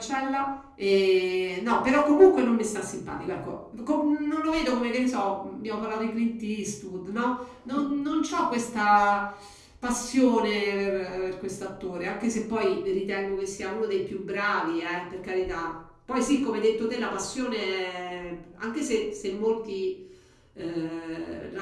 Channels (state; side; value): identical; both; correlation 1.00